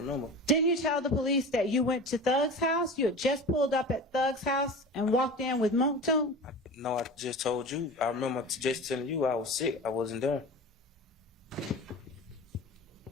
Didn't you tell the police that you went to Thug's house? You had just pulled up at Thug's house and walked in with Moontoon? No, I just told you. I remember just telling you I was sick. I wasn't there.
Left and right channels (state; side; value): normal; both; correlation 0.33